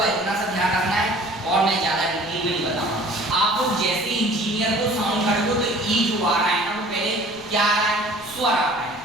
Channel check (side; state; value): left; noise; rumble, 24 dB below the sound